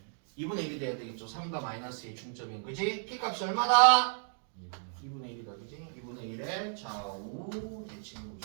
2분의 1이 돼야 되겠죠. 3과 마이너스의 중점인 그지? p값이 얼마다? 2분의 1이다. 그지? 2분의 1의 좌우 대칭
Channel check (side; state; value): left; silent; 56 dB below the other